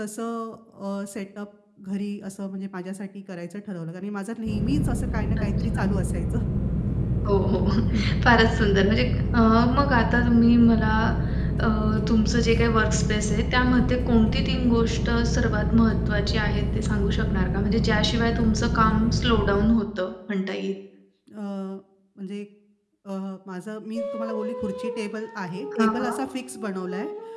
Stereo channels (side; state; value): both; identical; correlation 1.00